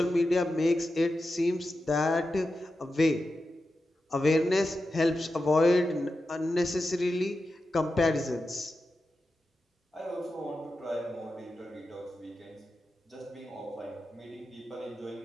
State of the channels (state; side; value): normal; both; correlation 0.90